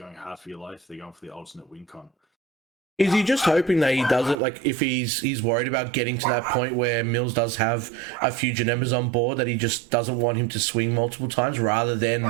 hard for your life. They're going for the alternate win con. Is he just hoping that he does it, like, if he's worried about getting to that point where Mills does have a few Janembas on board, that he just doesn't want him to swing multiple times rather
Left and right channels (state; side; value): drops out; left; at 4.4 s